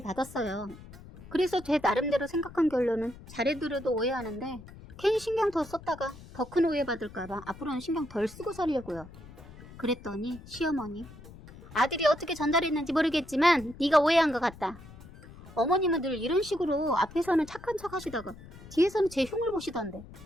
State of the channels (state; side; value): noise; left; rumble, 18 dB below the sound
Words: 그래서 제 나름대로 생각한 결론은 잘해드려도 오해하는데 괜히 신경 더 썼다가 더 큰 오해 받을까봐 앞으로는 신경 덜 쓰고 살려고요. 그랬더니 시어머니, 아들이 어떻게 전달했는지 모르겠지만 네가 오해한 것 같다. 어머님은 늘 이런 식으로 앞에서는 착한 척 하시다가 뒤에서는 제 흉을 보시던데